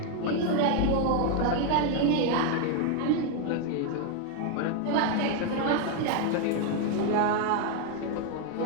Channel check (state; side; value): different; both; correlation 0.01